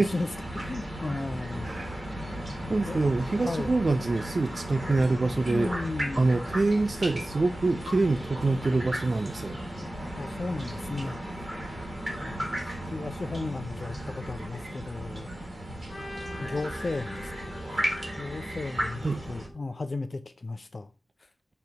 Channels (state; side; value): normal; both; correlation 0.95